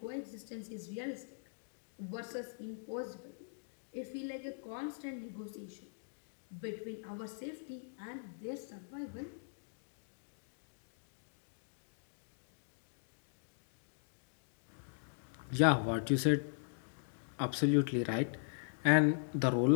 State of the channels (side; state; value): right; silent; digital silence